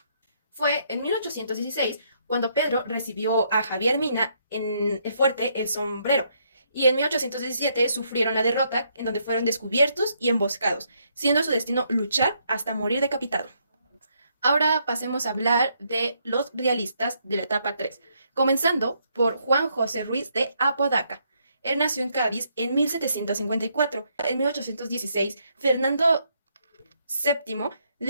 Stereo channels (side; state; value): both; inverted; correlation -0.73